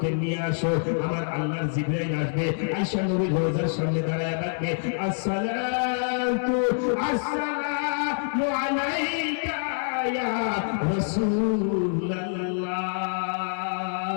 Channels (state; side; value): silent; right; 61 dB below the other